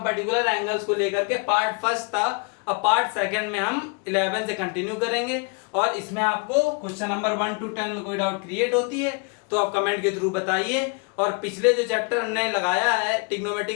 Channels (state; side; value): quieter; right; 33.9 dB